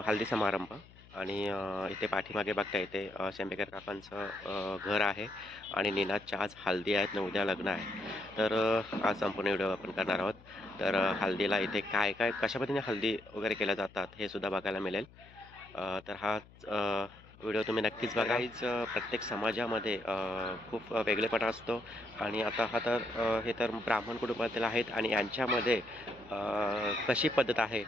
हल्दी समारंभ आणि इथे पाठीमागे बघता येते शेंबेकर काकांचं घर आहे आणि नीनाच्या आज हल्दी आहेत आणि उद्या लग्न आहे. तर आज संपूर्ण व्हिडिओ आपण करणार आहोत. तर हल्दीला इथे काय काय कशा पद्धतीने हल्दी वगैरे केल्या जातात हे सुद्धा बघायला मिळेल. तर हा व्हिडिओ तुम्ही नक्कीच बघा. प्रत्येक समाजामध्ये खूप वेगळेपणा असतो आणि आता हा तर हे तर ब्राह्मण कुटुंबातील आहेत आणि यांच्यामध्ये कशी पद्धत आहे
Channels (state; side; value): noise; left; hum, 23 dB below the sound